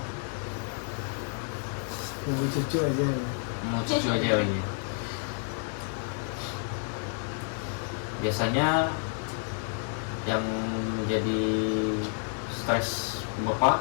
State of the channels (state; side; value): silent; right; 57 dB below the other